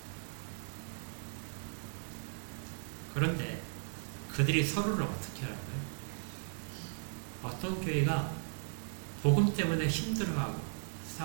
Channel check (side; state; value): left; silent; digital silence